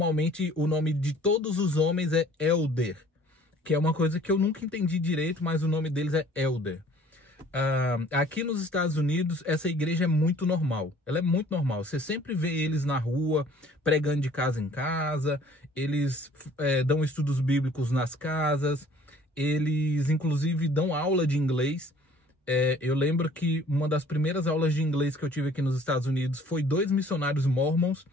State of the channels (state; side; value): normal; both; correlation 0.54